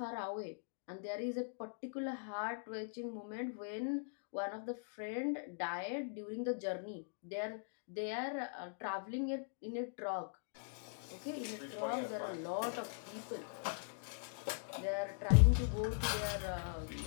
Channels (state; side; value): silent; right; digital silence